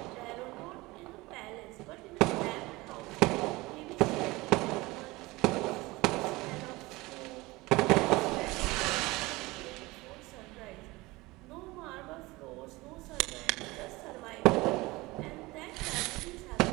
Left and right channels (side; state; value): left; quieter; 21.5 dB